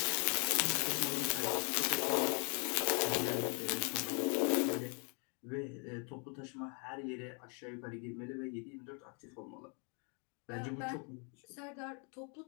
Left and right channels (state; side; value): quieter; right; 37.7 dB